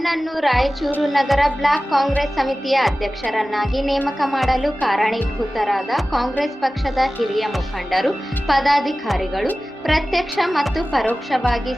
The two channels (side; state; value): both; normal; correlation 0.96